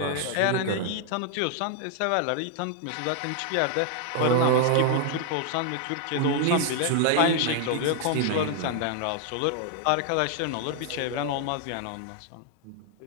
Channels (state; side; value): different; both; correlation 0.00